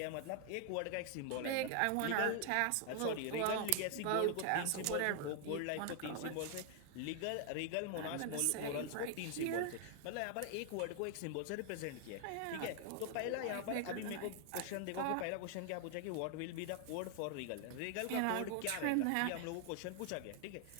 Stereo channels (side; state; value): both; different; correlation 0.00